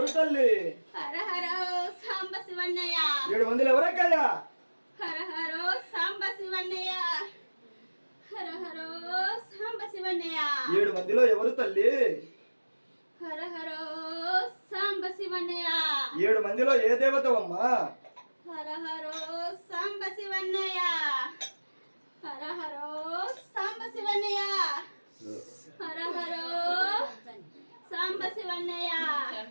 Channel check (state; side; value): inverted; both; correlation -1.00